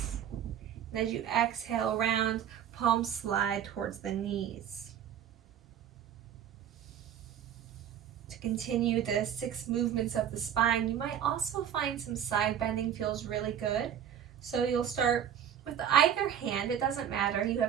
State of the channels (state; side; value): quieter; left; 9.4 dB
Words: And as you exhale, round, palms slide towards the knees. To continue the 6 movements of the spine, you might also find some side bending feels really good. So you'll start with either hand, it doesn't matter, you